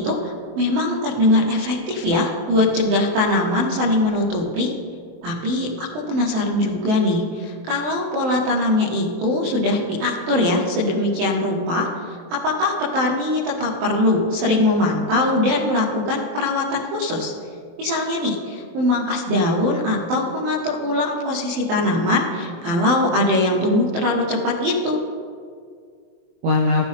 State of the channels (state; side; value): late; left; 23 ms